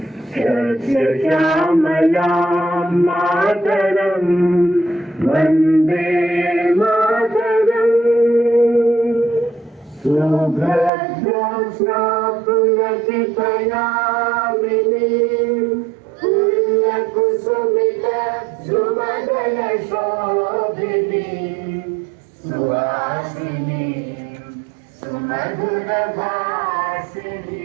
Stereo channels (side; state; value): left; drops out; at 10.9 s